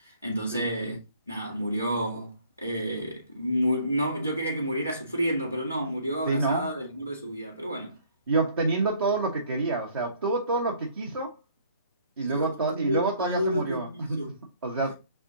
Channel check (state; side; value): inverted; both; correlation -0.59